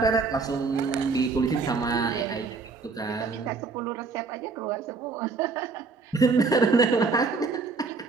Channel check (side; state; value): left; quieter; 4.4 dB